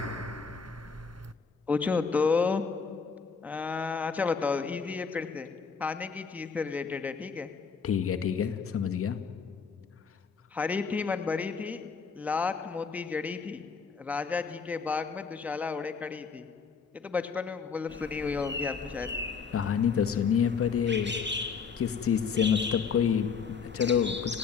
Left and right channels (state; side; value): quieter; right; 5.8 dB